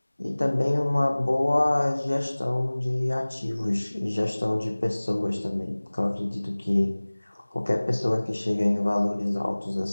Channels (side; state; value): both; inverted; correlation -1.00